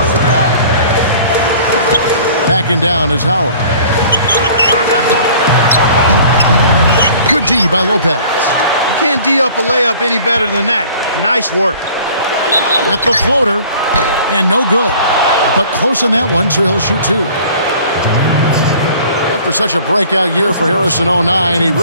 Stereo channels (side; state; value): both; inverted; correlation -0.49